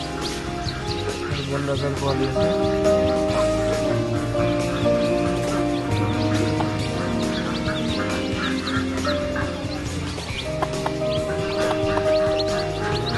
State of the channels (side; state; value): both; identical; correlation 1.00